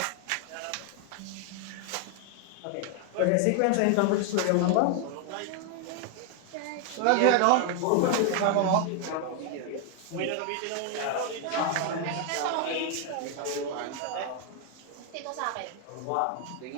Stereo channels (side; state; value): both; different; correlation 0.01